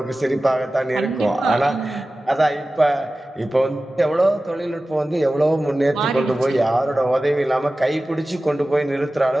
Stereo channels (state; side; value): normal; both; correlation 0.96